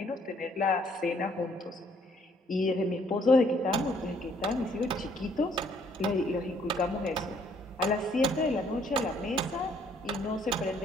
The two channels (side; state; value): both; normal; correlation 0.65